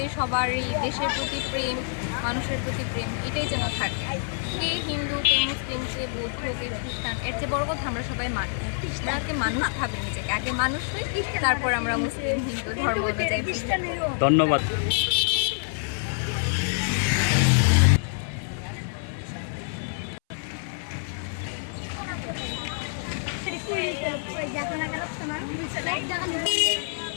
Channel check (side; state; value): right; silent; 60 dB below the other